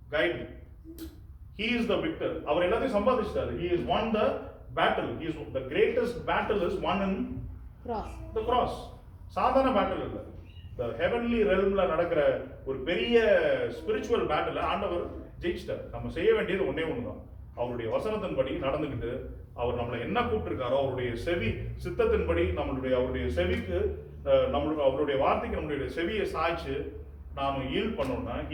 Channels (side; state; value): both; identical; correlation 1.00